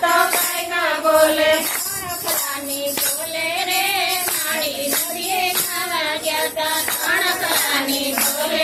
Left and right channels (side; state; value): both; identical; correlation 1.00